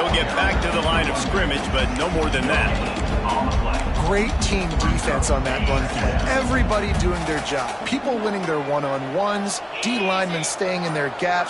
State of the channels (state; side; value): identical; both; correlation 1.00